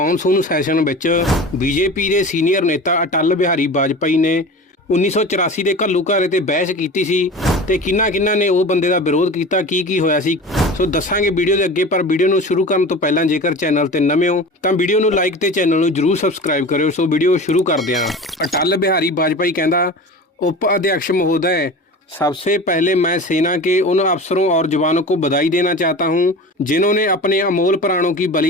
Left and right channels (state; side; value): normal; both; correlation 0.34